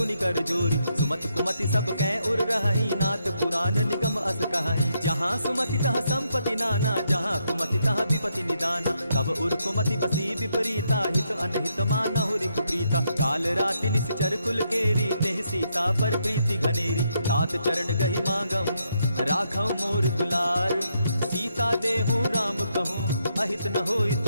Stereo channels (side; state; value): both; inverted; correlation -0.78